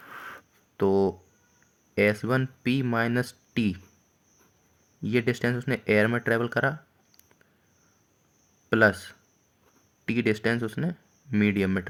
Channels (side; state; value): both; identical; correlation 1.00